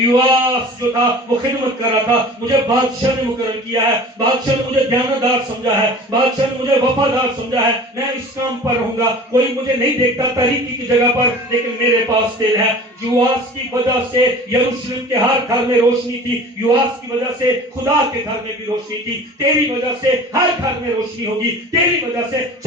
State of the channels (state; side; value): normal; both; correlation 0.41